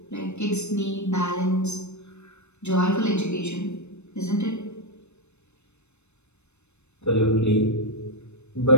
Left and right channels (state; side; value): late; right; 0.81 ms